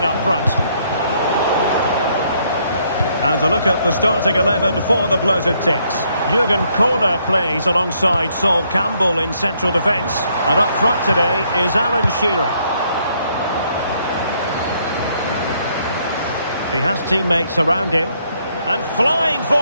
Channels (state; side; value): inverted; both; correlation -0.70